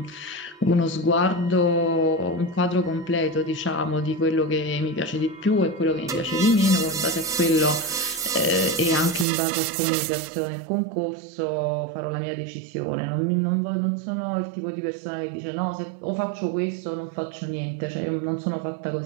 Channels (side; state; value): left; drops out; at 9.2 s